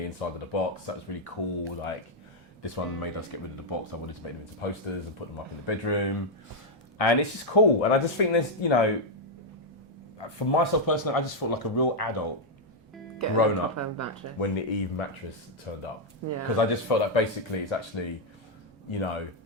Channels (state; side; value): normal; both; correlation -0.02